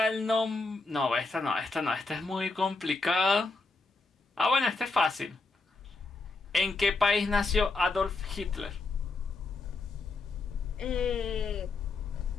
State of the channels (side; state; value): right; quieter; 3.7 dB